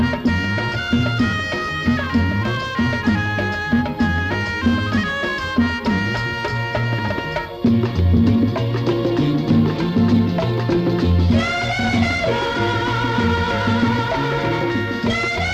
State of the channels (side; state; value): both; identical; correlation 1.00